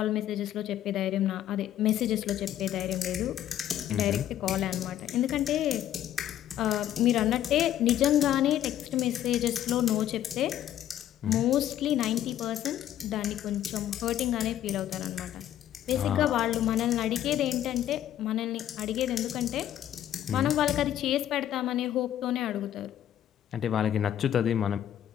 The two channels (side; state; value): right; quieter; 11.5 dB